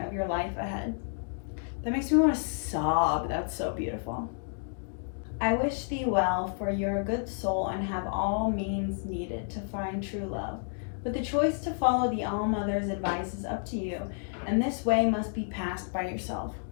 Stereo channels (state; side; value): silent; right; 57 dB below the other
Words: your life ahead. That makes me want to sob. That's so beautiful. I wish thee well, for you're a good soul and have all means needed to find true love. But the choice to follow the All-Mother's advice is up to you, and this way must be passed by yourself.